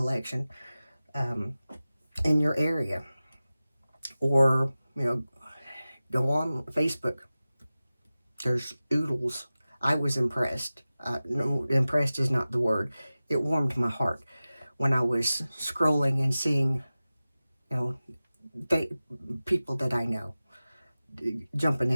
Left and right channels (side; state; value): both; inverted; correlation -0.96